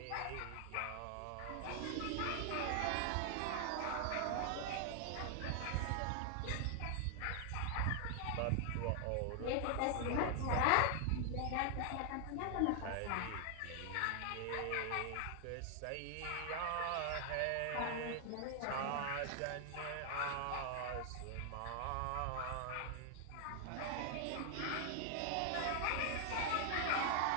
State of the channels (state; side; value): different; both; correlation 0.00